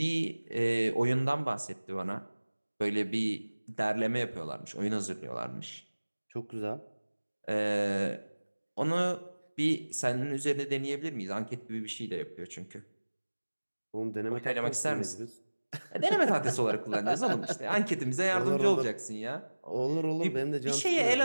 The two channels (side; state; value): both; inverted; correlation -1.00